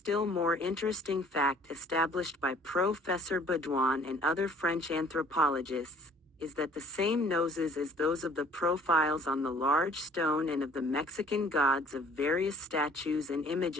more interesting fact established by Professor Baudouin and other French anthropologists is that the same noses as those of the profiles on the large stone and of the Mexican gods of various statues and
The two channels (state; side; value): normal; both; correlation 0.55